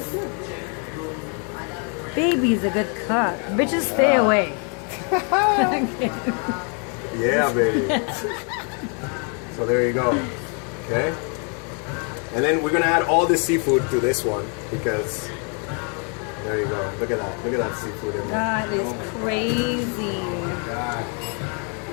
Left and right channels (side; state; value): right; quieter; 38.5 dB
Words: Baby's a good cook. Bitches stay away. Yeah, baby. So there you go. Okay. And then we're gonna add all the seafood to this one because There you go. Look at that. Look at that seafood in there. That is crazy. God.